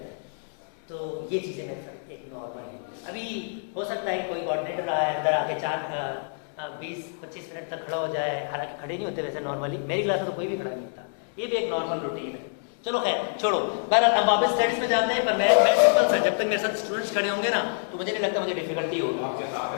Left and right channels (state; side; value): silent; right; digital silence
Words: हैं, तो ये चीज़ें मेरे साथ एक नॉर्मल है। अभी हो सकता है कि कोई कोऑर्डिनेटर आए अंदर आके 20-25 मिनट तक खड़ा हो जाए, हालांकि खड़े नहीं होते वैसे नॉर्मली, मेरी क्लास में तो कोई भी खड़ा नहीं होता, ये भी एक नॉर्मल रूटीन है। चलो खैर छोड़ो, बहरहाल हम वापस स्टडीज में जाते हैं। पर मैं सिंपल सा, जब तक मेरे साथ स्टूडेंट्स खड़े होंगे ना तो मुझे नहीं लगता मुझे डिफिकल्टी होगी।